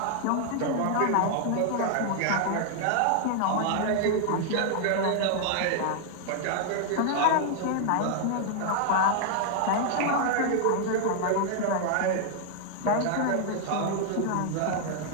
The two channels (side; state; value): both; different; correlation 0.00